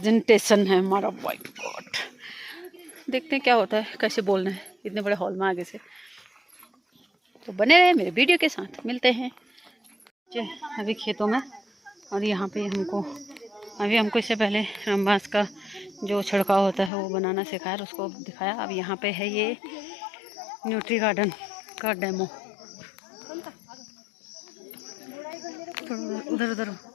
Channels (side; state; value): right; drops out; at 16.9 s